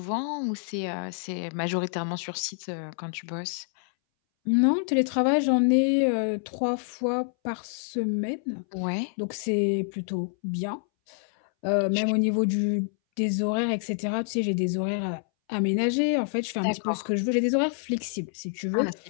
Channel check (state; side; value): silent; right; 60 dB below the other